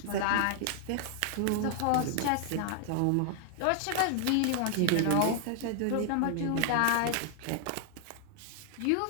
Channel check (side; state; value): both; different; correlation 0.00